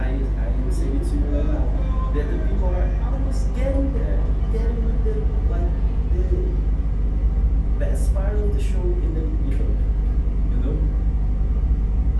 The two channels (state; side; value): identical; both; correlation 1.00